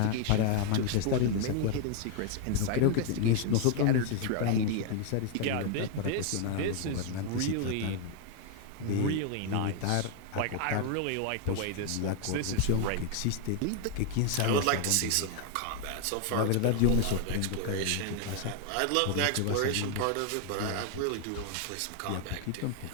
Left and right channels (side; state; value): both; different; correlation 0.00